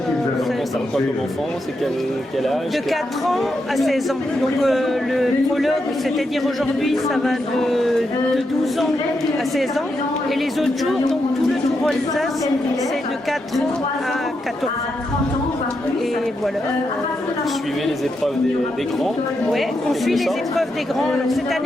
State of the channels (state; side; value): normal; both; correlation 0.84